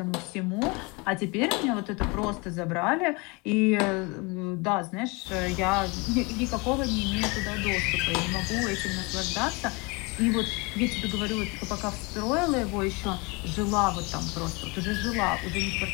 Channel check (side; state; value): right; quieter; 27.8 dB